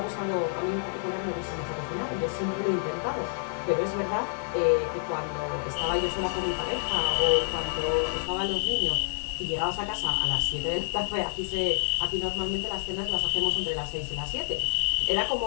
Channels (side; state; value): right; silent; digital silence